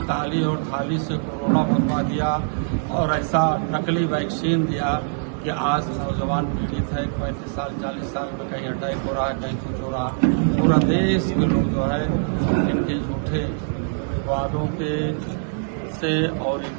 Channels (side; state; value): left; silent; 63 dB below the other